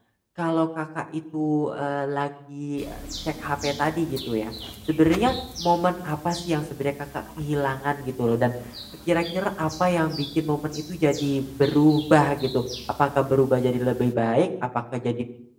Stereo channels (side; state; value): both; identical; correlation 1.00